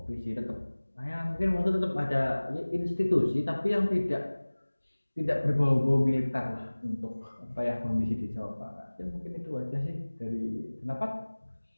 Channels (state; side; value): inverted; both; correlation -1.00